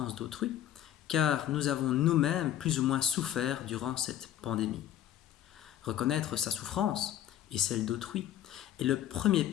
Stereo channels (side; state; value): right; quieter; 11.5 dB